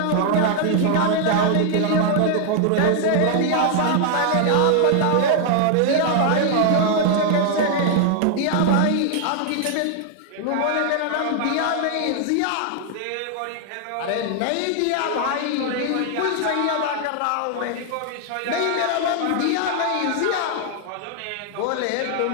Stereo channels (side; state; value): both; different; correlation 0.00